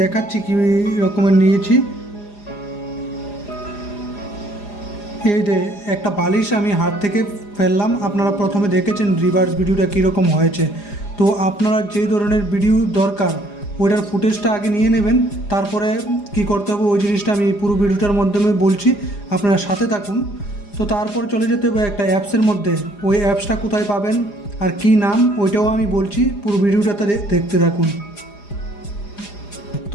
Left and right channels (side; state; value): right; late; 4.9 ms